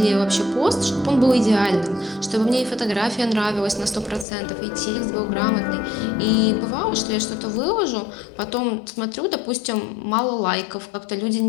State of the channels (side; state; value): right; drops out; at 4.2 s